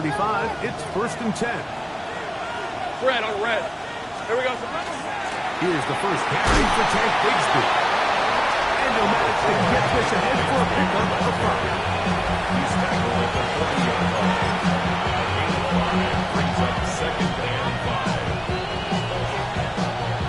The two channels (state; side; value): identical; both; correlation 1.00